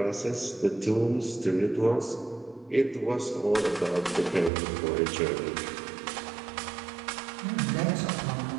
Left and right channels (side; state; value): left; drops out; at 4.5 s